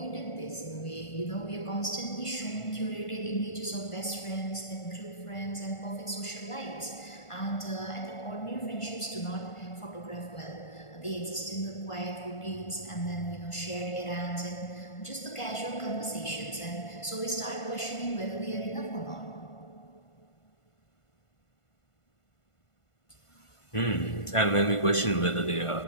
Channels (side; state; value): right; late; 1.5 ms